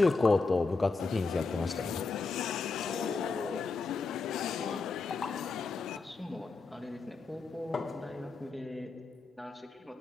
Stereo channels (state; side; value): quieter; right; 4.0 dB